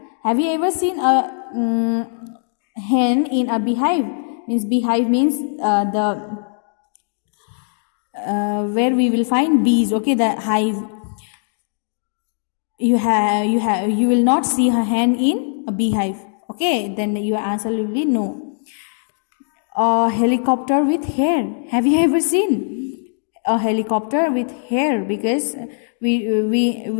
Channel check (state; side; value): silent; right; digital silence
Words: Have you ever seen a hen in a beehive? Means beehive means where we will find bees. Okay, the hive. You will not see a hen in a beehive. Okay, then your answer will be no. A helicopter with hair. Have you ever seen a helicopter with hair? Because we